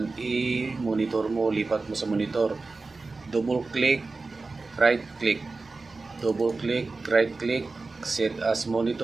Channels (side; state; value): left; quieter; 3.7 dB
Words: i-monitor mo, lipat mo sa monitor. Double click, right click. Double click, right click, set as